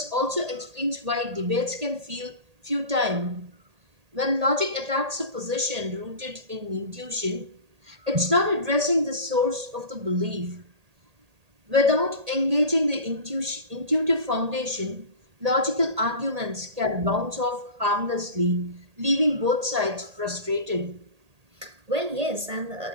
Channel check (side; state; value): left; late; 1.8 ms